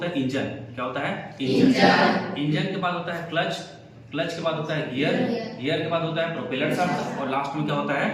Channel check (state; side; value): identical; both; correlation 1.00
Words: है इंजन। क्या होता है? इंजन के बाद होता है क्लच के बाद होता है गियर के बाद होता है प्रोपेलर शाफ्ट और लास्ट में क्या होता है?